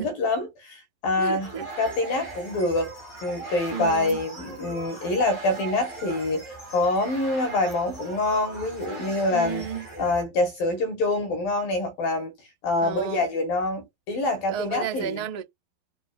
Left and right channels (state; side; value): late; right; 11 ms